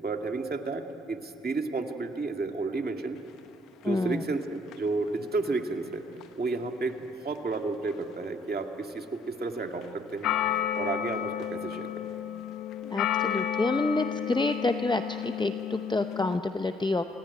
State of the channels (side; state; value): both; normal; correlation 0.64